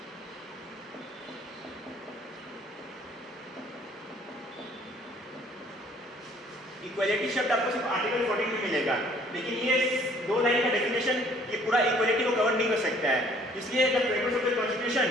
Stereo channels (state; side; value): normal; both; correlation 0.58